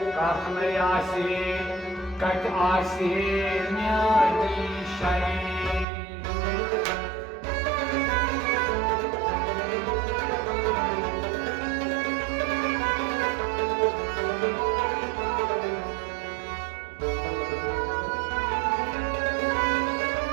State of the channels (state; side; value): drops out; left; at 5.9 s